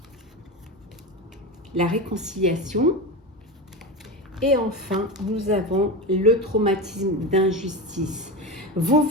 la réconciliation et enfin nous avons le traumatisme d'injustice. Vous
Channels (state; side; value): normal; both; correlation 0.21